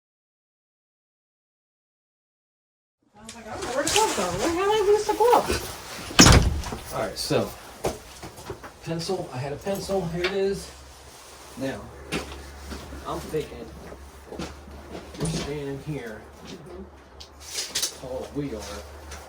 I was like, I don't know where the glove go. Where the hell did I lose the glove? All right, so pencil. I had a pencil. Here it is. Now, I'm thinking we're standing here. Tall we are.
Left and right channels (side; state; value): both; identical; correlation 1.00